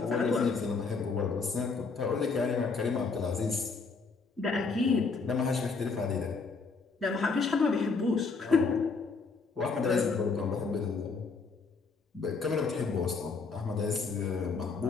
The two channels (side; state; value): right; quieter; 4.6 dB